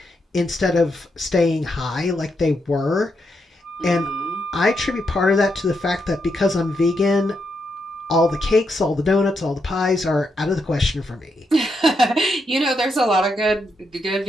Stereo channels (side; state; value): both; normal; correlation 0.81